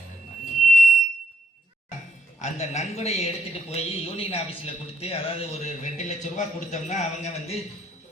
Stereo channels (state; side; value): normal; both; correlation 0.77